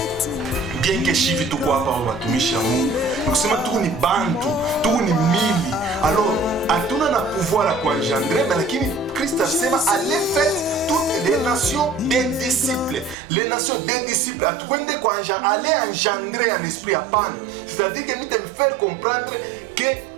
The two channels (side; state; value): left; drops out; at 13.2 s